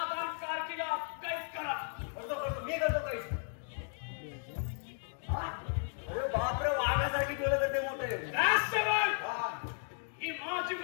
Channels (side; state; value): right; silent; 54 dB below the other